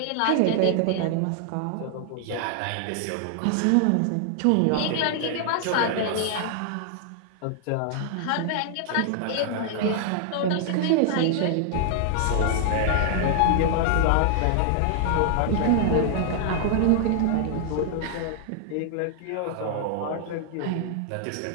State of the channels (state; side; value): different; both; correlation -0.01